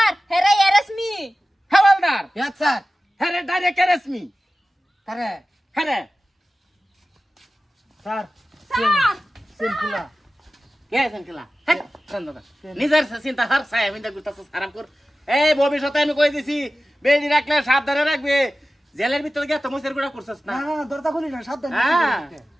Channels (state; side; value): normal; both; correlation 0.95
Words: হেরে এরেসমি। Howlader yes sir. হ্যাঁ রে ডাইরেক্ট রেসমি কারে হ্যাঁ রে স্যার স্যার সিম্পলা কে সেনকিলা হ্যাঁ দাদা নিজের চিন্তা হার চাই আমি দেখতেছ আরাম কর। এই ভবিষ্যতে আমি কই দিছি বেড়ি রাখলে সাবধানে রাখবে, জেলের ভিতরে গিয়ে তমসের গুড়া করছস না। না না দরজা খুলি না সাবধান। হ্যাঁ